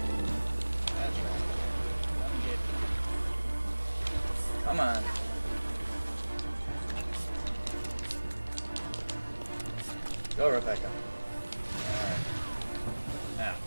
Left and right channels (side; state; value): both; inverted; correlation -1.00